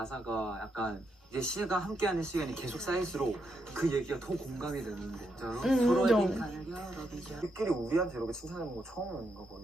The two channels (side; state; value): both; normal; correlation 0.81